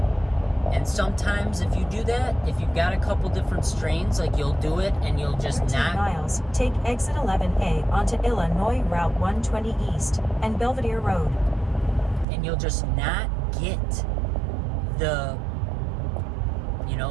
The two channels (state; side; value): drops out; left; at 12.2 s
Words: And sometimes if you do that, if you've got a couple different strains, like, you'll do it and you'll just 13 not... miles, take exit 11A onto Illinois Route 120 East and Belvedere Road. And you'll just not get the, you